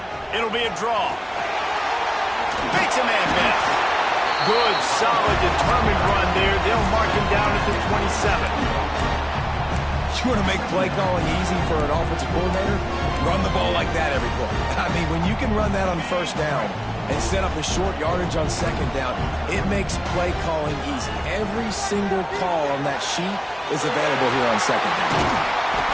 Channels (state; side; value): identical; both; correlation 1.00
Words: It'll be a draw. Makes a man miss. Good, solid, determined run there. They'll mark him down at the 27. You want to make play calling easy for an offensive coordinator? Run the ball like that every play. I mean, when you can run that on 1st down and set up a short yardage on 2nd down, it makes play calling easy. Every single call on that sheet is available here on 2nd down.